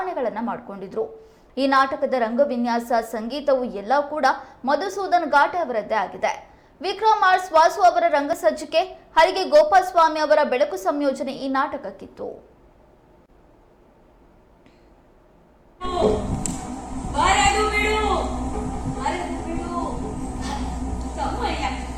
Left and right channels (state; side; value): identical; both; correlation 1.00